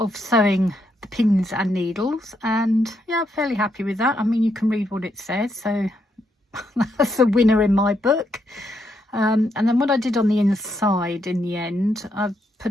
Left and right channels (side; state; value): both; normal; correlation 0.78